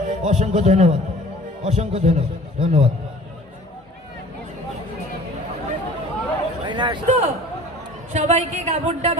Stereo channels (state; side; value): normal; both; correlation 0.47